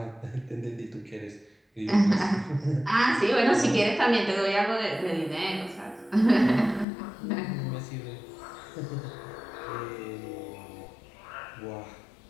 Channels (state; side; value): drops out; right; at 6.9 s